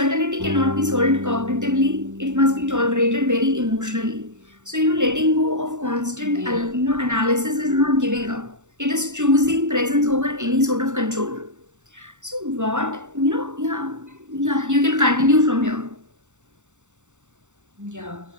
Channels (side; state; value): left; late; 0.84 ms